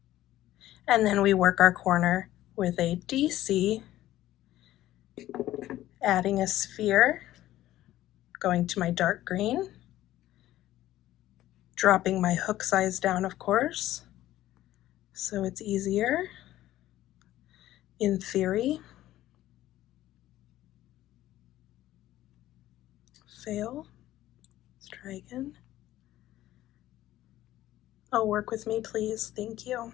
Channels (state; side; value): quieter; right; 14.4 dB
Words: and then we work our corner with a DC, adding a sphere, going to my dark green, dropping my hook size down, of course, so it's easier in theory. Fail. Let's try again. Oh, work with me, please. Thank you.